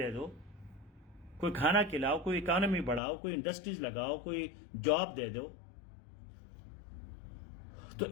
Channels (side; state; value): right; drops out; at 3.0 s